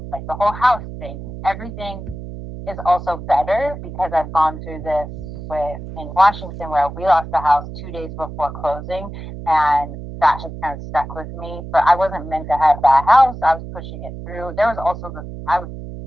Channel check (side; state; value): right; noise; hum, 10 dB below the sound